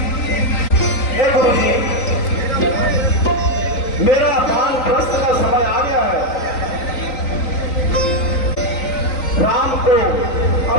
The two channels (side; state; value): right; late; 3.9 ms